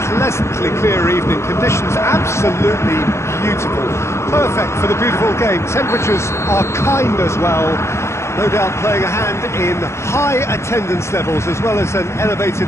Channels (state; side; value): late; right; 0.13 ms